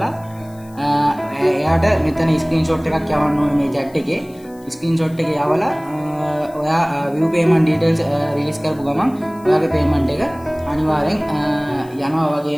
එයාට මෙතන ස්ක්‍රීන්ෂොට් එකක් යවන්න ඕනේ මේ chat එකේ. ස්ක්‍රීන්ෂොට් එක යවලා ඔයා view payment details රිලීස් කරපු ගමන් ඔයාගේ payment එක අනිවාර්යෙන් යනවා.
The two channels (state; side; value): noise; left; hiss, 26 dB below the sound